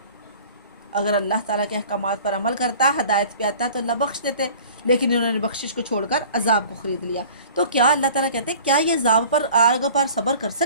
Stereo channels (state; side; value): inverted; both; correlation -0.46